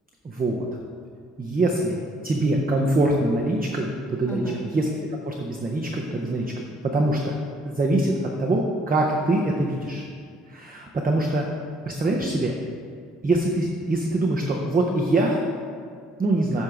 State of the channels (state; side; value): normal; both; correlation 0.67